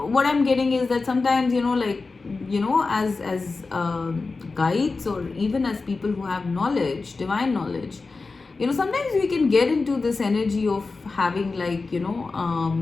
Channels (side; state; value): right; quieter; 4.0 dB